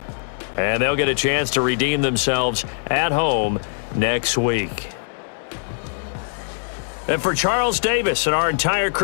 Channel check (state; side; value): silent; right; digital silence